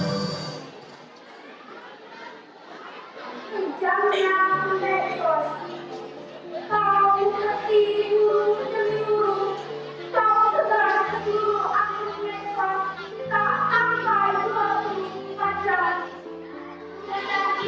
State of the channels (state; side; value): identical; both; correlation 1.00